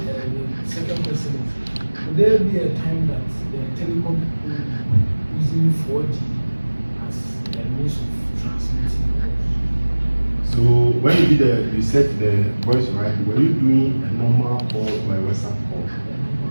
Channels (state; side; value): inverted; both; correlation -1.00